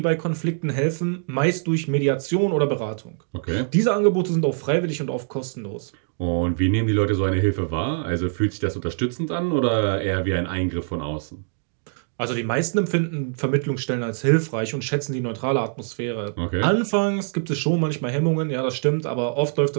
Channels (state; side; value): silent; left; digital silence